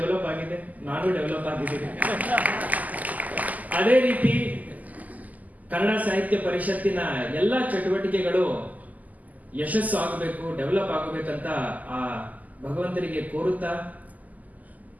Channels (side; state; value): left; late; 0.079 ms